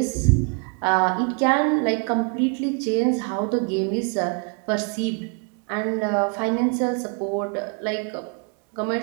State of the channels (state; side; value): quieter; left; 37.6 dB